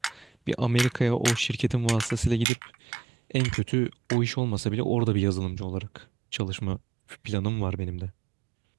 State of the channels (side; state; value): left; drops out; at 2.5 s